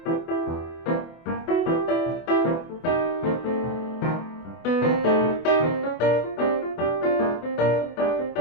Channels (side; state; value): right; late; 24 ms